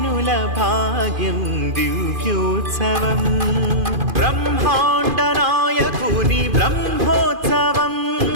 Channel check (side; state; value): left; late; 2.5 ms